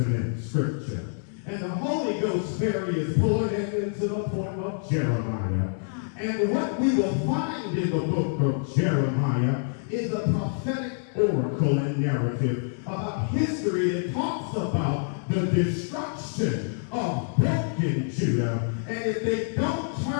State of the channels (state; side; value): silent; right; 60 dB below the other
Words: scripture. And the Holy Ghost ferry is pulling into the poem of Jeremiah. And what we will find in the book of Jeremiah is a prophetic oracle and narrative about history that talks about the destruction of broken Judah. And if they don't